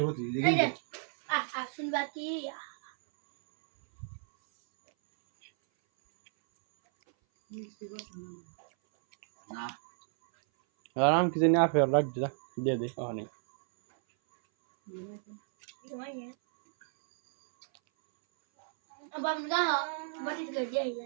তুই এই এগিয়ে যে দে শুনবা কি না আরাম কি জানি আপে রাখ দে যা দিয়ে দে ওখানে अब हम कहा बड़ी कर दिया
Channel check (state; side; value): silent; left; 56 dB below the other